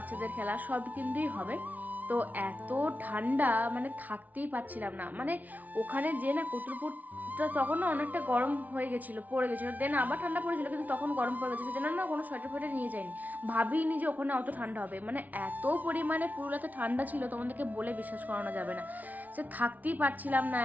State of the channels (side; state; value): left; late; 0.076 ms